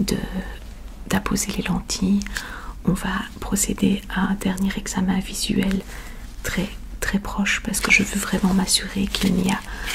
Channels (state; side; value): identical; both; correlation 1.00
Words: d'apposer les lentilles, on va procéder à un dernier examen visuel très proche parce que je veux vraiment m'assurer qu'il n'y a